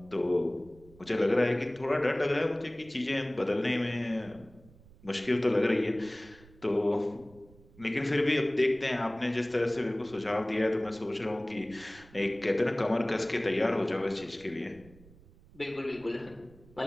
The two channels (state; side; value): noise; right; rumble, 24 dB below the sound